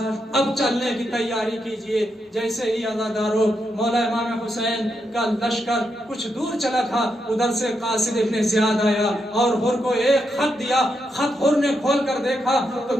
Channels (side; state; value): both; normal; correlation 0.83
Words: اب چلنے کی تیاری کیجئے جیسے ہی عزاداروں مولا امام حسین کا لشکر کچھ دور چلا تھا ادھر سے قاصد ابن زیاد آیا اور حر کو ایک خط دیا خط حر نے کھول کر دیکھا تو